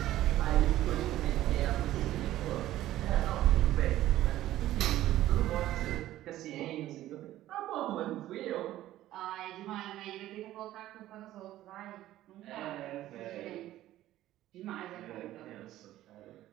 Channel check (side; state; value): left; quieter; 14.3 dB